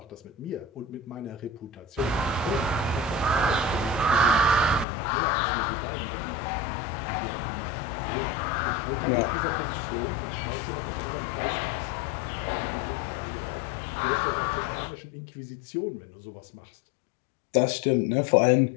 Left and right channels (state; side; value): drops out; right; at 4.9 s